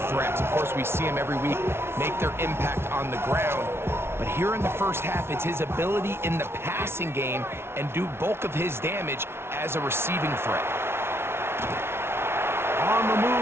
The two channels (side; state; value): left; late; 0.12 ms